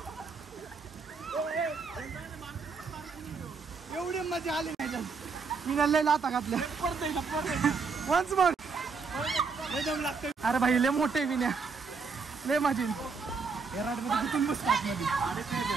एवढी मजा आली नाही मी लय लाता घातल्या वन्स मोर दम लागते अरे भाई लय मोठे विन्या लय माझी हेराड मध्ये कुठून बसतात मध्ये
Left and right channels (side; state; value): left; quieter; 4.9 dB